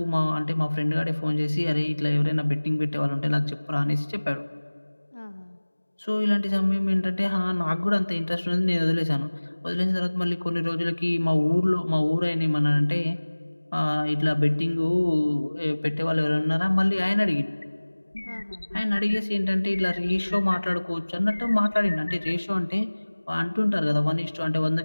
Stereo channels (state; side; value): inverted; both; correlation -1.00